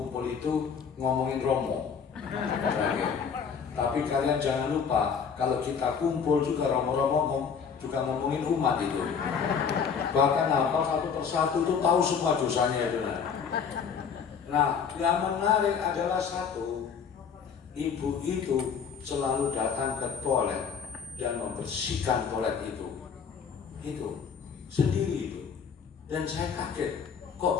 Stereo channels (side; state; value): right; quieter; 6.6 dB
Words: itu ngomongin Romo. Tapi kalian jangan lupa, kalau kita kumpul juga Romo-Romo juga ngomongin umat itu. Bahkan hafal satu persatu itu tahu semua dosanya itu. Nah, yang menarik adalah satu, ibu itu selalu datang ke toilet dan membersihkan toilet itu sendiri itu. Dan saya kaget, kok